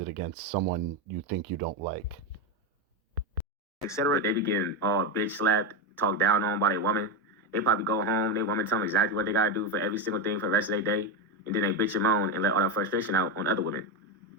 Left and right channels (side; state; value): both; normal; correlation 0.11